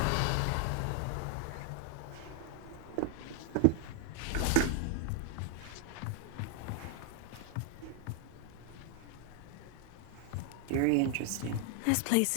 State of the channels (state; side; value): different; both; correlation 0.00